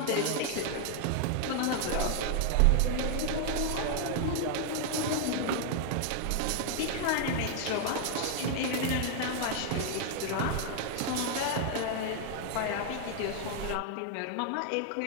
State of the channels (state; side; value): different; both; correlation 0.00